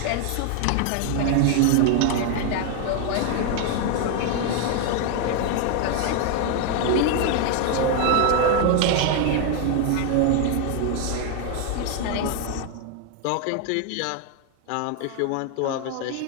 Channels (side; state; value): both; different; correlation 0.01